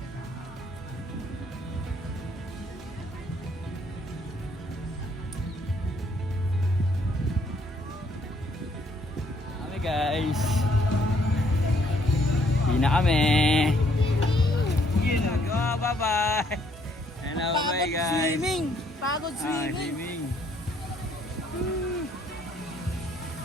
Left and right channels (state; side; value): normal; both; correlation 0.67